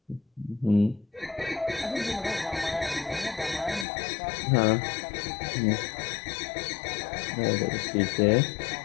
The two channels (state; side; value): drops out; right; at 3.9 s